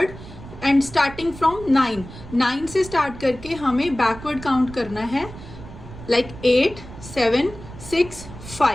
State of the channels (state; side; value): noise; right; rumble, 15 dB below the sound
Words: and starting from 9 से स्टार्ट करके हमें बैकवर्ड काउंट करना है, लाइक 8 7 6